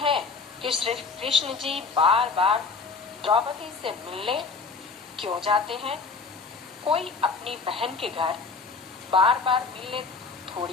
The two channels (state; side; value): quieter; right; 4.6 dB